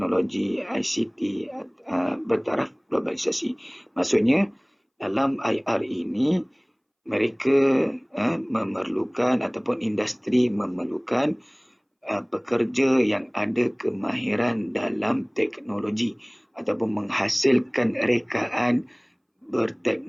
ICT bertaraf globalisasi. Maksudnya, dalam IR ini, mereka memerlukan ataupun industri memerlukan pekerja yang ada kemahiran dalam teknologi ataupun menghasilkan rekaan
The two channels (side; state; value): both; identical; correlation 1.00